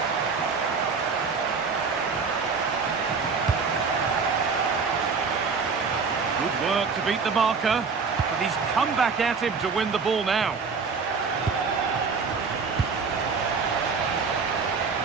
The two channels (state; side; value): quieter; left; 5.1 dB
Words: Good work to beat the marker, but he's come back at him to win the ball now.